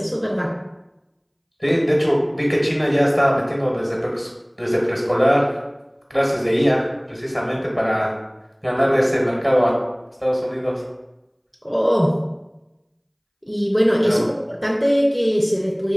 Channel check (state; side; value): identical; both; correlation 1.00